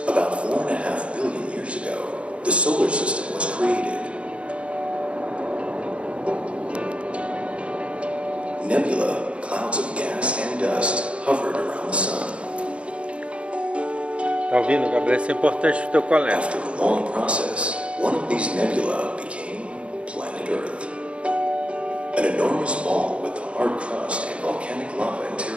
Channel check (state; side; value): late; left; 0.060 ms